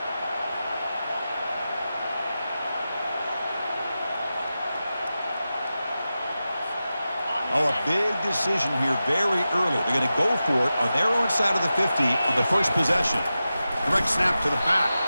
Oh, a big decision here very early. They're going to go for it on their own side of the 50 on the first possession. Direct snap to the back.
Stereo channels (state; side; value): inverted; both; correlation -0.93